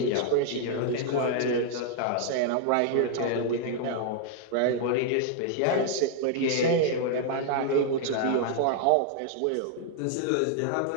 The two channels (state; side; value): different; both; correlation -0.01